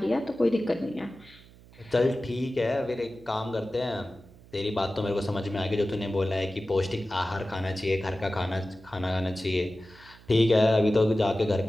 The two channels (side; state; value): right; noise; hum, 23 dB below the sound